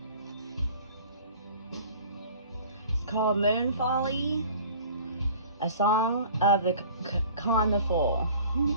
It's called Moon Folly, a song of the Con the Fool.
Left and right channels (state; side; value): inverted; both; correlation -0.47